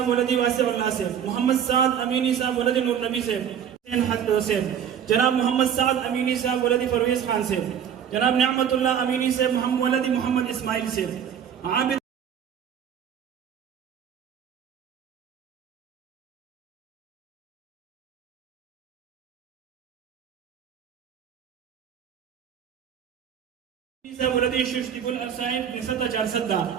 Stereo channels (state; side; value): quieter; left; 8.6 dB